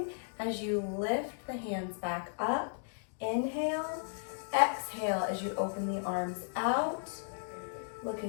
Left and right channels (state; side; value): silent; right; digital silence